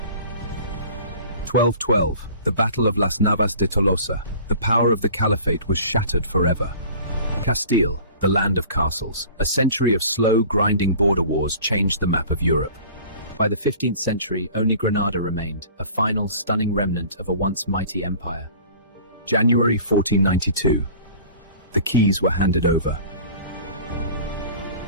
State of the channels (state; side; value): inverted; both; correlation -0.44